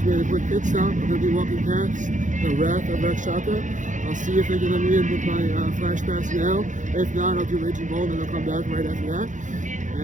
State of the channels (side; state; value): left; late; 0.36 ms